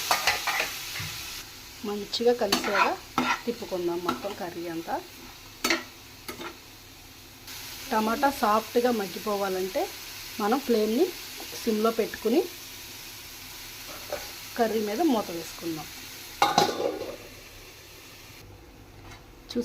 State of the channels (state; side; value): identical; both; correlation 1.00